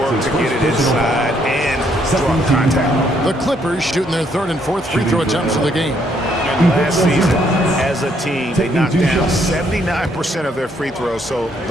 to get it inside and draw contact. The Clippers shooting their 3rd and 4th free throw attempts of the game. And last season, as a team, they knocked down 79% of their free throws. So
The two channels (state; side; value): normal; both; correlation 0.70